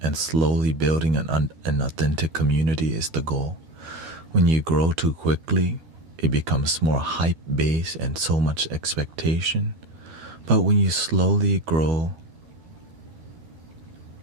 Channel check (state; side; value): late; left; 12 ms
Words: slowly building an authentic community is the goal. When you grow too quickly, it becomes more hype-based and so much expectation. But when you slowly grow